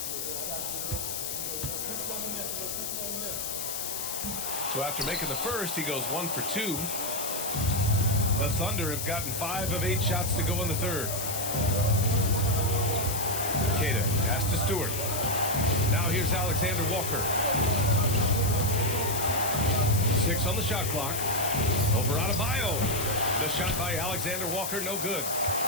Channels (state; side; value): noise; left; hiss, 4 dB below the sound